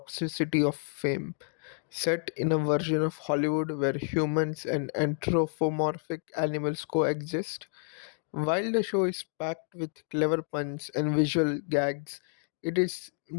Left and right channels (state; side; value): silent; right; 58 dB below the other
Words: of fame. Set in a version of Hollywood where humans and anthropomorphic animals coexist, while the show is packed with clever puns and visual gags, it is